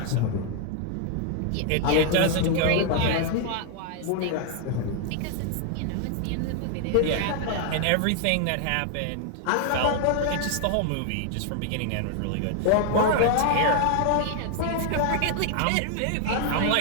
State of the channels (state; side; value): different; both; correlation 0.00